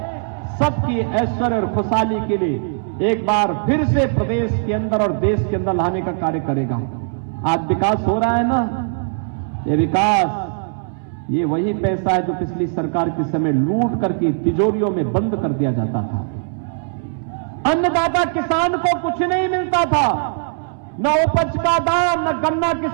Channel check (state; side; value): silent; left; 66 dB below the other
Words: सबकी ऐश्वर्य और खुशहाली के लिए एक बार फिर से प्रदेश के अंदर और देश के अंदर लाने का कार्य करेगा। आज विकास हो रहा है ना, ये विकास, ये वही पैसा है जो पिछली सरकार के समय लूट करके तिजोरियों में बंद कर दिया जाता था। अन्नदाता किसान को कुछ नहीं मिलता था, न उपज का दाम, न गन्ना